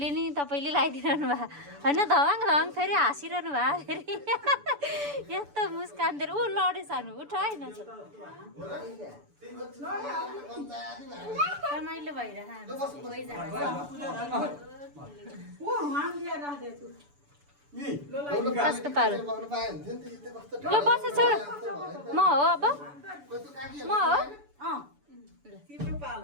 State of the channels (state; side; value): late; left; 6.9 ms